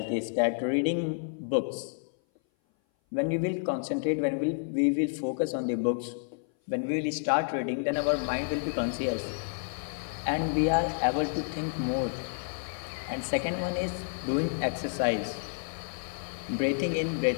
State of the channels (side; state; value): right; silent; 56 dB below the other